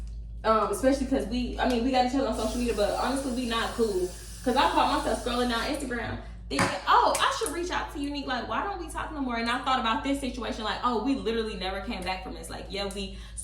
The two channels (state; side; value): identical; both; correlation 1.00